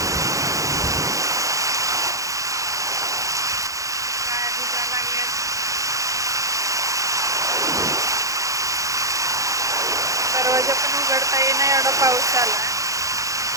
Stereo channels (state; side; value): late; left; 0.16 ms